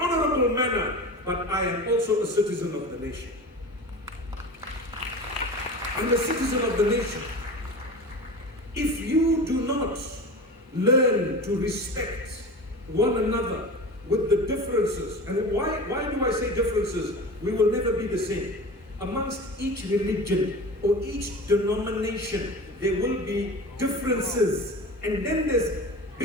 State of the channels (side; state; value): both; normal; correlation 0.32